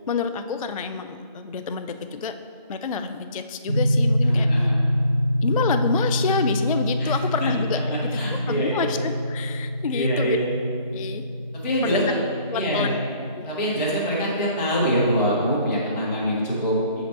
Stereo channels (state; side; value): inverted; both; correlation -0.58